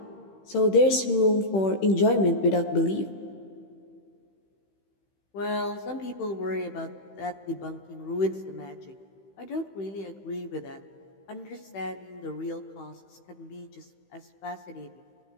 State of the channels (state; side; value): late; right; 15 ms